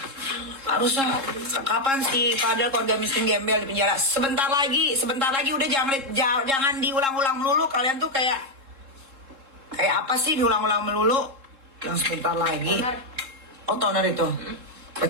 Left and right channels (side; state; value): left; late; 3.7 ms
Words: Harusnya kapan sih padahal keluarga miskin gembel di penjara? Sebentar lagi udah jangan diulang-ulang melulu. Kalian tuh kayak apa sih diulang-ulang melulu? Yang sebentar lagi. Oh, toner itu.